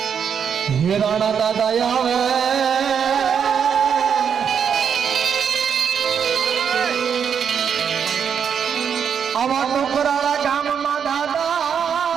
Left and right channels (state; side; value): quieter; left; 7.4 dB